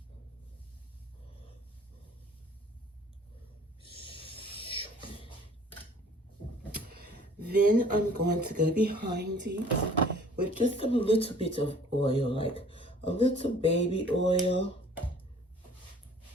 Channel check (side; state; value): both; normal; correlation 0.53